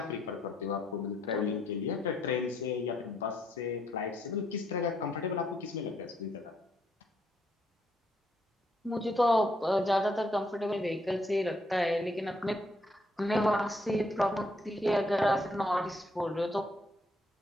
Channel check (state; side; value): normal; both; correlation 0.73